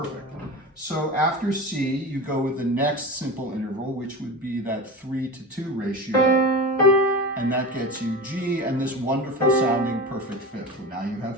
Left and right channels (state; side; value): normal; both; correlation 0.27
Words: So after C, you go with the next simple interval, which would be that 3 to 2 ratio, and that gets you G and this wonderful sounding perfect fifth. Now you